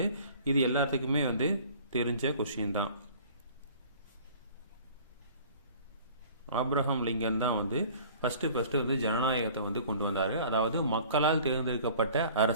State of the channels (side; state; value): both; inverted; correlation -0.48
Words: இது எல்லாத்துக்குமே வந்து தெரிஞ்ச கொஷின் தான். ஆப்ரஹாம் லிங்கன் தான் வந்து ஃபஸ்ட்டு வந்து ஜனநாயகத்தை வந்து கொண்டு வந்தார். அதாவது மக்களால் தேர்ந்தெடுக்கப்பட்ட